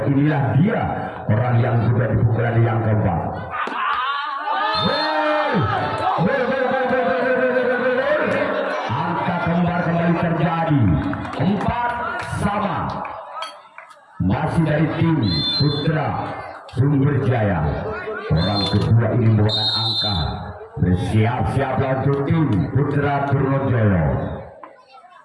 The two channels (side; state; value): both; identical; correlation 1.00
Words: Inilah dia orang yang kedua di pukulan yang keempat. Angka kembar kembali terjadi 4-sama. Masih dari tim Putra Sumberjaya. Orang kedua ini membawakan angka. Bersiap-siap untuk tim Putra Trojolo